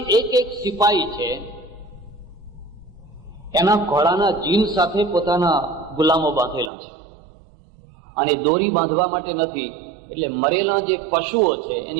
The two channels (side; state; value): left; drops out; at 6.7 s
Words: એક સિપાહી છે, એના ઘોડાના જીન સાથે પોતાના ગુલામો બાંધેલા છે, અને દોરી બાંધવા માટે નથી, એટલે મરેલા જે પશુઓ છે